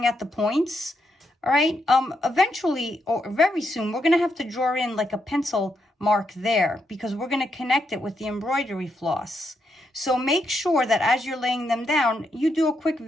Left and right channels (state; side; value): normal; both; correlation 0.80